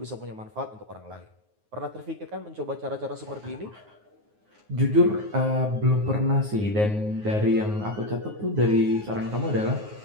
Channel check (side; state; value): left; late; 9.5 ms